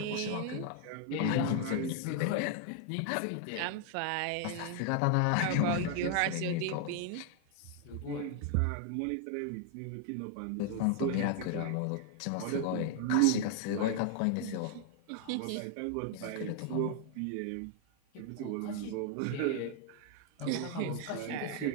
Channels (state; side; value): different; both; correlation 0.00